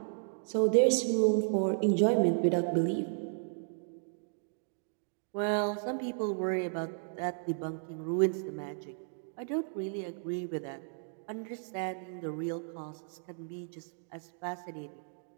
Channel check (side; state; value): left; silent; digital silence